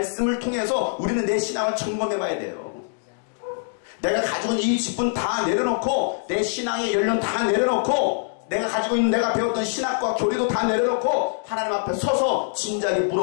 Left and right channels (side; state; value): right; silent; digital silence